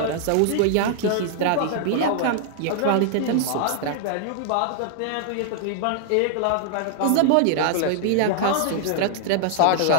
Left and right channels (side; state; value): both; different; correlation -0.01